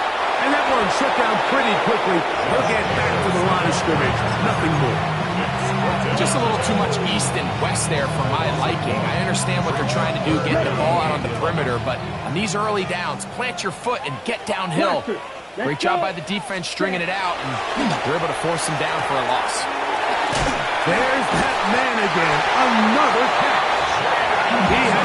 And that one shut down pretty quickly. He'll get back to the line of scrimmage. Nothing more. Just a little too much east and west there for my liking. I understand what they're trying to do, get the ball out on the perimeter, but on these early downs, plant your foot and get downhill. Great job by the defense stringing it out, and they're able to force him down for a loss. There's that man again. Another catch. He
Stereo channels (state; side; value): identical; both; correlation 1.00